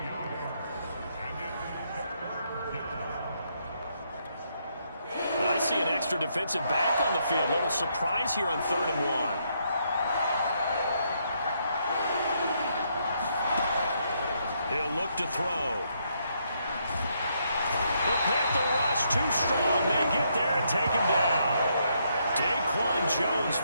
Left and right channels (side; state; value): both; inverted; correlation -0.75